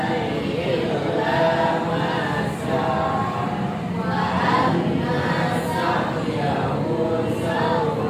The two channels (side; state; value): both; identical; correlation 1.00